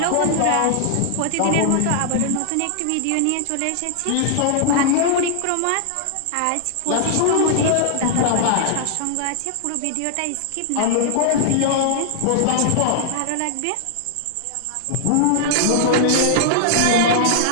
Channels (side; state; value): both; different; correlation -0.01